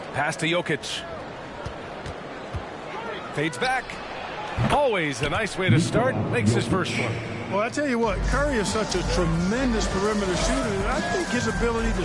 Pass to Jokic. Fades back. Always a nice way to start. Makes his first one. Well, I tell you what, Curry is such a tremendous perimeter shooter. I think his ability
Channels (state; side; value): identical; both; correlation 1.00